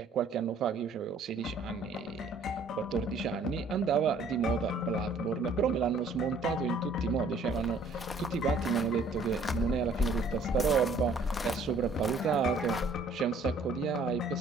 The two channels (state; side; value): quieter; left; 3.2 dB